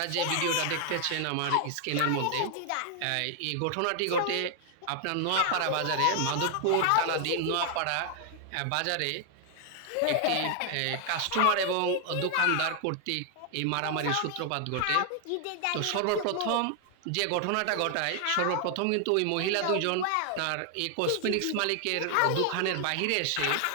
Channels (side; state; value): both; different; correlation 0.00